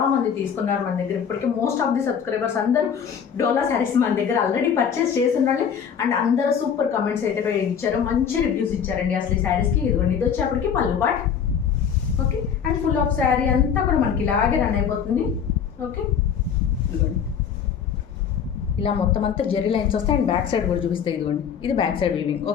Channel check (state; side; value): quieter; right; 7.5 dB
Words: మంది తీసుకున్నారు మన దగ్గర. ఇప్పటికీ మోస్ట్ ఆఫ్ ది సబ్స్క్రైబర్స్ అందరూ డోలా శారీస్ మన దగ్గర ఆల్రెడీ పర్చేస్ చేస్తున్నారు. అండ్ అందరూ సూపర్ కమెంట్స్ అయితే ఇచ్చారు, మంచి రివ్యూస్ ఇచ్చారండి అసలు ఈ శారీస్కి. ఇది వచ్చేప్పటికి పళ్ళు పాట్. Okay, and full of sari అంతా కూడా మనకి ఇలాగే రన్ అయిపోతుంది. ఓకే, ఇలా మొత్తం అంతా జెరీ లైన్స్ వస్తాయి. అండ్ బ్యాక్ సైడ్ కూడా చూపిస్తాయి. ఇదిగోండి, ఇది బ్యాక్ సైడ్ వీవింగ్.